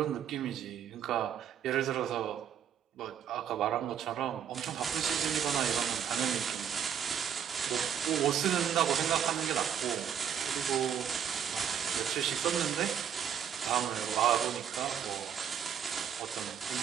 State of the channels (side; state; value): left; quieter; 8.7 dB